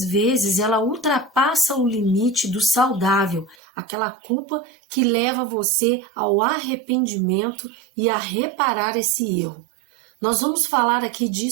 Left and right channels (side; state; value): left; drops out; at 3.6 s